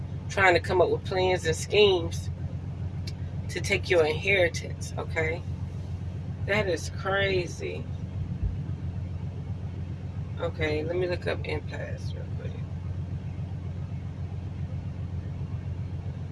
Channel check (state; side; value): identical; both; correlation 1.00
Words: trying to come up with plans and schemes to take your inheritance, okay? That is crazy. Okay, let me look up impasse real quick.